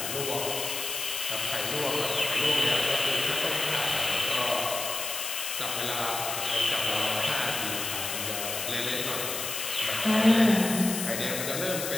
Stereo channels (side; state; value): left; noise; hiss, 4 dB below the sound